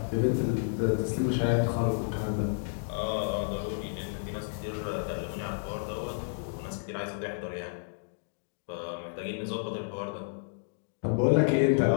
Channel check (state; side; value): silent; right; digital silence